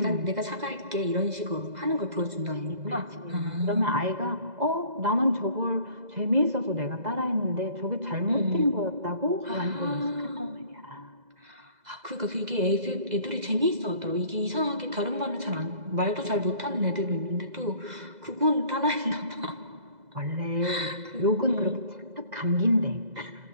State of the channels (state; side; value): late; left; 2.0 ms